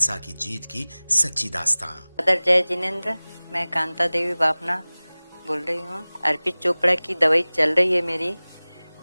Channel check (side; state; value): both; inverted; correlation -1.00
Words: की जीत की सच्ची दास्तां। अदर जय जिनेंद्र, मैं कांता देवी बापना बोल रही हूँ। अर्पित चोपड़ा की दवाई चल रही है मेरी,